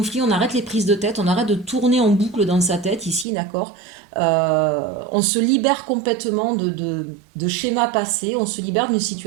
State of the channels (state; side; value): drops out; left; at 3.2 s